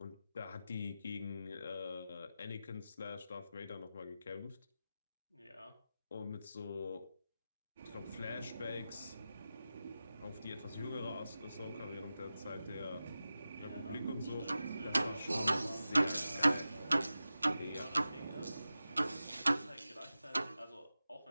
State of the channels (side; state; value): both; inverted; correlation -0.93